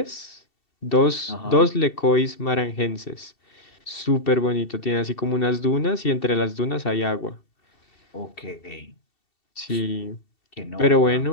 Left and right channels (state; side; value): late; right; 2.7 ms